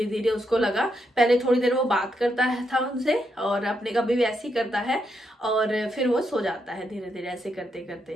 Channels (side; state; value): both; normal; correlation 0.80